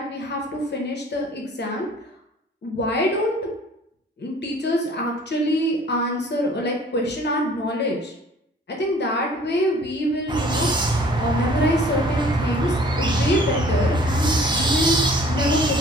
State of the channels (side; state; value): both; normal; correlation 0.52